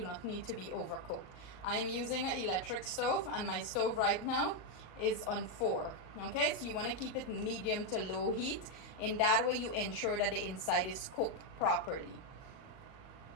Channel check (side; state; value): right; late; 38 ms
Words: need to be overcooked. I am using an electric stove, and my stove right now is on 4. Okay, so you want to keep it medium to low heat. In that way you ensure that the inside is cooked properly.